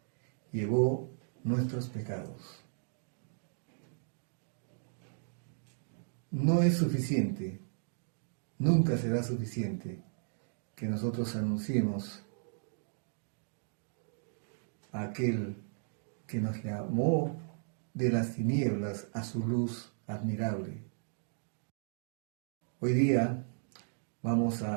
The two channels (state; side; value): silent; left; digital silence